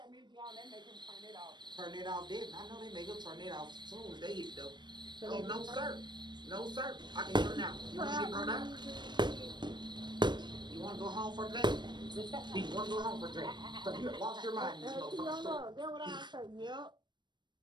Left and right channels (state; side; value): late; left; 0.22 ms